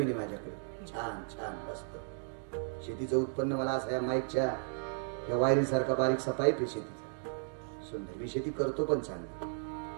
आहे माझ्याकडे, छान छान मस्त. शेतीचं उत्पन्न मला असं या माईकच्या या वायरीसारखा बारीकसा पाईप आहे शेतीचा, सुंदर. मी शेती करतो पण चांगली.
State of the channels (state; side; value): silent; left; digital silence